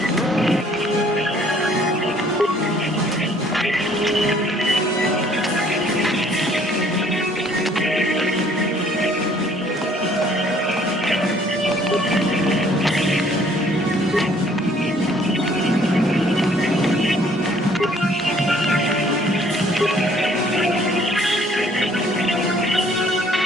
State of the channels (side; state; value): both; normal; correlation 0.60